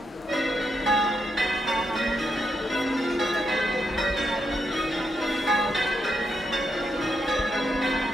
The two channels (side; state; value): both; normal; correlation 0.81